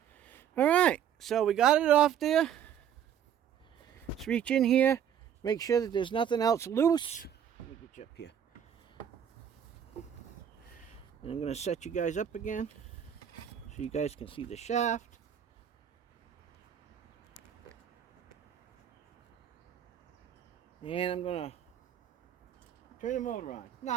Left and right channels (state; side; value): quieter; left; 9.2 dB